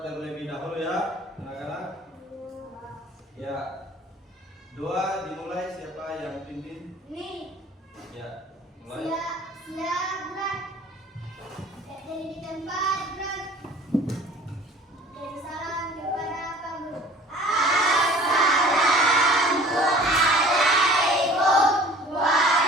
terlebih dahulu ya, anak-anak. Ya, doa dimulai, siapa yang pimpin? Nih. Ya, mulai. Siap, gerak. Dari di tempat, gerak. Dan salam kepada Pak Guru. Assalamualaikum warahmatullahi wabarakatuh.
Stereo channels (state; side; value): normal; both; correlation 0.48